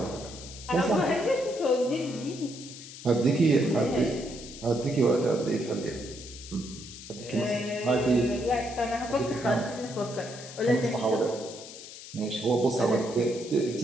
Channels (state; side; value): noise; left; hiss, 14 dB below the sound